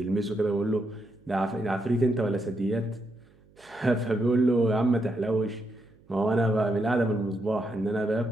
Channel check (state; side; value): noise; right; hum, 30 dB below the sound